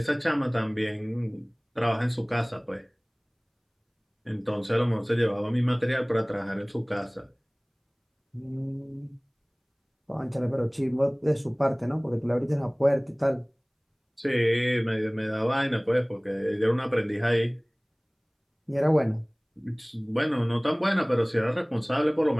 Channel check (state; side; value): identical; both; correlation 1.00